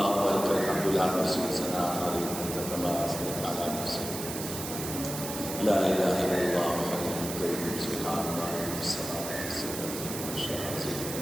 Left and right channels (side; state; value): right; noise; hiss, 7 dB below the sound